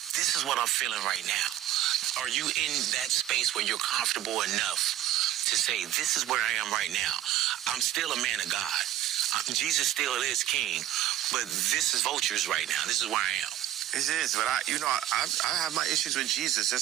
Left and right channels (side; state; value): left; quieter; 12.7 dB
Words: this is what I'm feeling right now. Are you in that space where you're comfortable enough to say, this is where I am right now? I'm still a man of God. Jesus still is king, but this is vultures right now. This is where I am. It is, but I have my issues with Jesus.